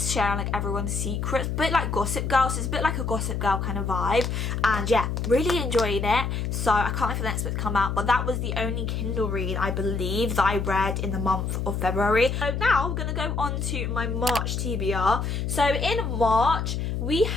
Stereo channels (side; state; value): left; noise; hum, 2 dB below the sound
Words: like everyone's secrets, a bit like Gossip Girl, so it's a bit like a Gossip Girl kind of vibe. And yeah, really enjoyed it, so I can't wait for the next book to come out. But that was the only Kindle read I believe that I read in the month of February. So now I'm gonna go on to my March TBR. So in March we